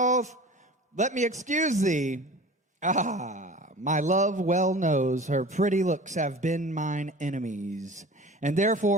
Let me excuse thee. Ah, my love well knows her pretty looks have been mine enemies, and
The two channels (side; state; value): both; normal; correlation 0.39